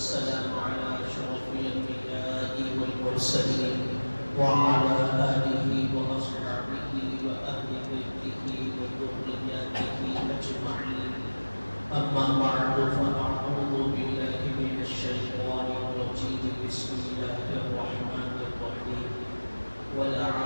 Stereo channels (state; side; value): inverted; both; correlation -1.00